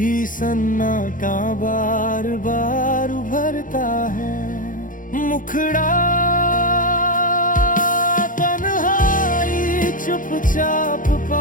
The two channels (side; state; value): right; late; 0.39 ms